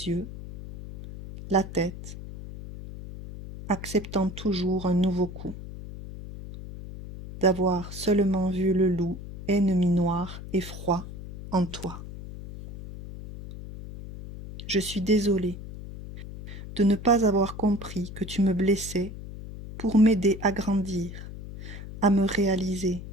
yeux, la tête, acceptant toujours un nouveau coup, d'avoir seulement vu le loup ennemi noir et froid en toi. Je suis désolée de ne pas avoir compris que tu me blessais pour m'aider à grandir, à me réaliser,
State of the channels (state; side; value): noise; left; hum, 12 dB below the sound